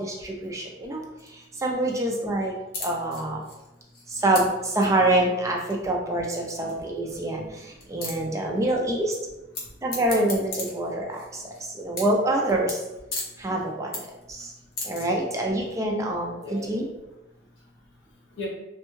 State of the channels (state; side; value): normal; both; correlation 0.32